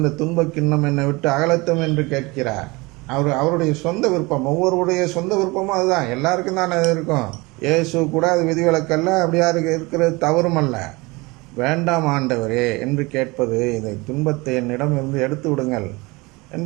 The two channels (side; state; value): left; quieter; 24.3 dB